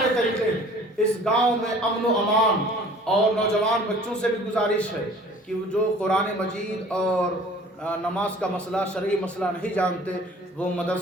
طریقے ہیں۔ اس گاؤں میں امن و امان، اور نوجوان بچوں سے بھی گزارش ہے کہ جو قرآن مجید اور نماز کا مسئلہ، شرعی مسئلہ نہیں جانتے، وہ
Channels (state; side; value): normal; both; correlation 0.49